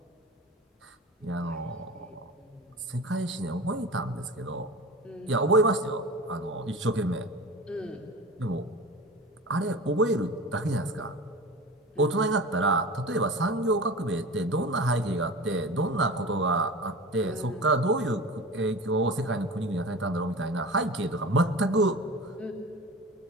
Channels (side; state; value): both; normal; correlation 0.33